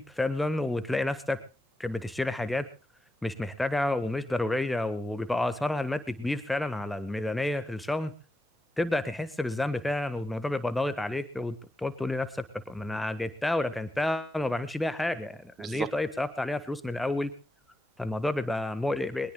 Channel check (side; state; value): both; normal; correlation 0.90